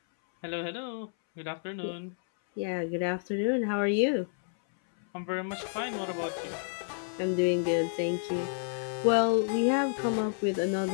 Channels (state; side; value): silent; right; 58 dB below the other